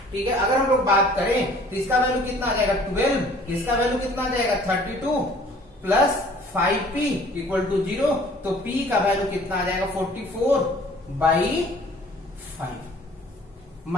ठीक है, अगर हम लोग बात करें तो इसका वैल्यू कितना आ जाएगा 12, इसका वैल्यू कितना आ जाएगा 32 प्लस 5p इक्वल टू 0। तो p का वैल्यू कितना आ जाएगा 44/5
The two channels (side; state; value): both; normal; correlation 0.52